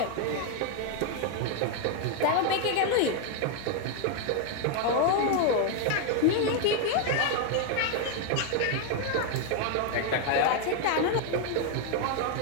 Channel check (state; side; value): different; both; correlation 0.00